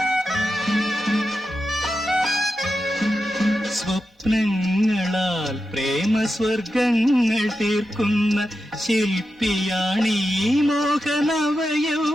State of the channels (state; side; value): normal; both; correlation 0.89